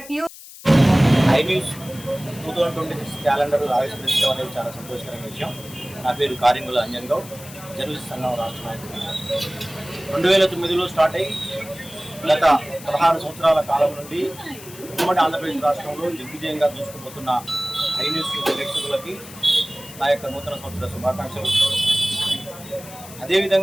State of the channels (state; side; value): noise; left; hiss, 16 dB below the sound